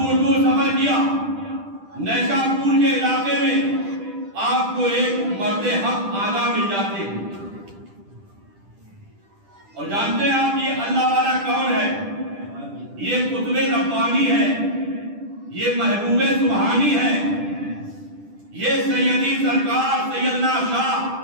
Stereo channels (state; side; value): late; left; 10 ms